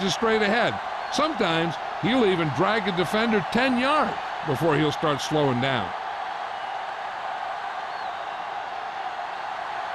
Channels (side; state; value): both; identical; correlation 1.00